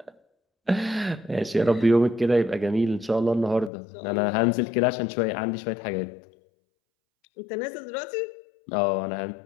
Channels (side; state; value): right; drops out; at 3.7 s